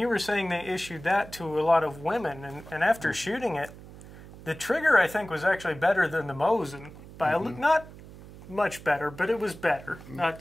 you were saying they issued that to a lot of women, and after shooting it, the trigger I think was actually better than the Mosin by not much better, but it was better. Not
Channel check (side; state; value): right; noise; hum, 17 dB below the sound